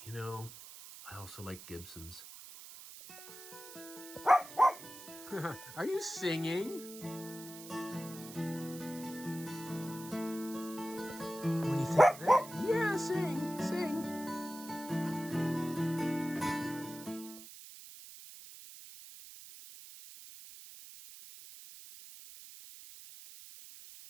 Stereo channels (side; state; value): right; noise; hiss, 14 dB below the sound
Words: you know, I also like Gibsons. Are you singing? What do you think of that? Yeah, sing.